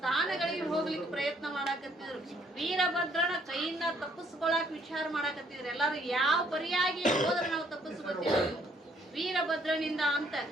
ಹೋಗ್ಲಿಕ್ಕೆ ಪ್ರಯತ್ನ ಮಾಡಾಕತ್ತಿದ್ರು, ವೀರಭದ್ರನ ಕೈಯಿಂದ ತಪ್ಪಿಸ್ಕೊಳಕ್ ವಿಚಾರ ಮಾಡಾಕತ್ತಿದ್ರು. ಎಲ್ಲಾರು ಯಾವ ಪರಿಯಾಗಿ ಹೋದ್ರೆ ನಾವು ತಪ್ಪಿಸ್ಕೊತೀವಿ, ವೀರಭದ್ರನಿಂದ ಅಂತ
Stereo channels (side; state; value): both; normal; correlation 0.65